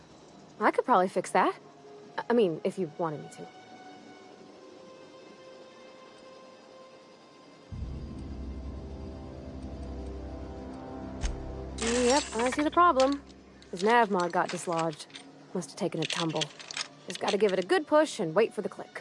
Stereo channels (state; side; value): identical; both; correlation 1.00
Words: I could probably fix that. I mean, if you wanted me to. Yep, I see the problem. His nav mod got dislodged. Must have taken a tumble. Just gotta give it a good push and wait for the click.